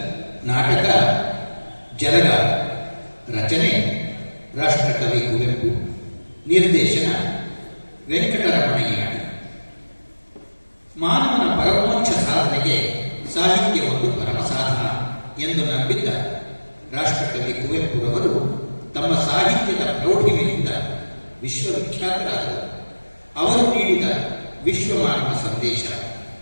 ನಾಟಕ ಜಲಗ, ರಚನೆ ರಾಷ್ಟ್ರಕವಿ ಕುವೆಂಪು, ನಿರ್ದೇಶನ ವೆಂಕಟರಮಣಯ್ಯ. ಮಾನವನ ಪರಮೋಚ್ಚ ಸಾಧನೆಗೆ ಸಾಹಿತ್ಯ ಒಂದು ಪರಮ ಸಾಧನ ಎಂದು ನಂಬಿದ್ದ ರಾಷ್ಟ್ರಕವಿ ಕುವೆಂಪುರವರು ತಮ್ಮ ಸಾಹಿತ್ಯದ ಪ್ರೌಢಿಮೆಯಿಂದ ವಿಶ್ವವಿಖ್ಯಾತರಾದರು. ಅವರು ನೀಡಿದ ವಿಶ್ವಮಾನವ ಸಂದೇಶ,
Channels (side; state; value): both; inverted; correlation -1.00